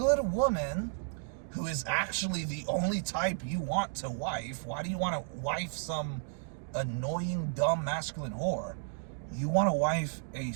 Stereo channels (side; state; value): left; silent; digital silence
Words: woman who is actually the only type you want to wife. Why do you want to wife some annoying, dumb, masculine whore? You want to wife a